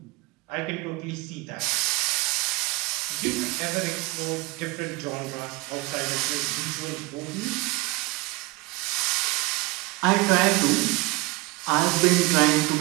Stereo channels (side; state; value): left; quieter; 22.7 dB